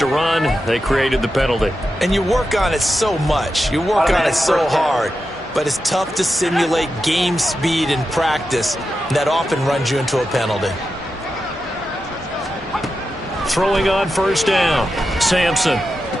run. They created the penalty. And you work on it so much. You work on it so hard. But it's tough to simulate game speed in practice. That often runs you into a penalty. Throwing on first down. Sampson.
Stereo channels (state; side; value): normal; both; correlation 0.90